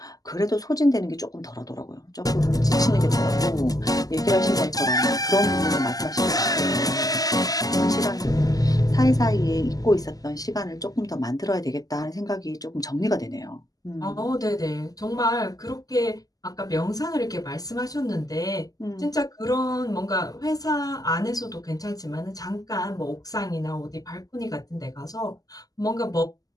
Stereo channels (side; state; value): right; late; 0.17 ms